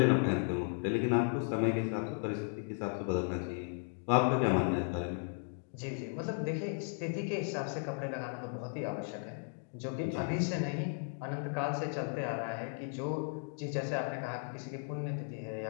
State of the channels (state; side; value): silent; right; 54 dB below the other